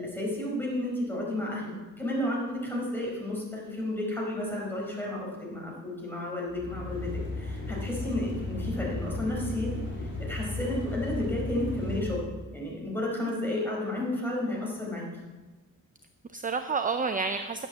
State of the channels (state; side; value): normal; both; correlation 0.49